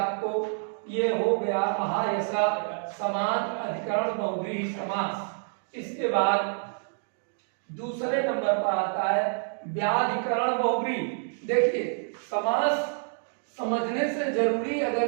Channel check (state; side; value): silent; left; 59 dB below the other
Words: ये हो गया महायश समान अधिकरण बहुव्रीहि समास। इसके बाद दूसरे नंबर पर आता है व्याधिकरण बहुव्रीहि। देखिए समास समझने से जरूरी,